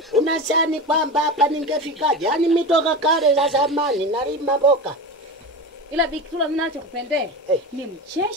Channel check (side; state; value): both; normal; correlation 0.25